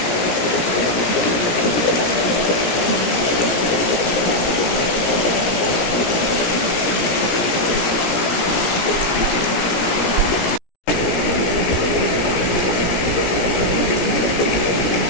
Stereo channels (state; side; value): late; right; 17 ms